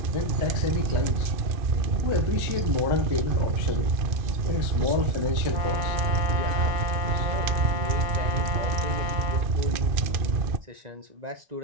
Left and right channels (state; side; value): late; left; 2.5 ms